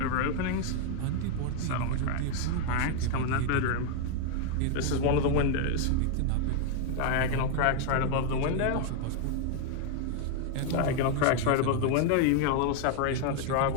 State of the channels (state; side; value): different; both; correlation 0.00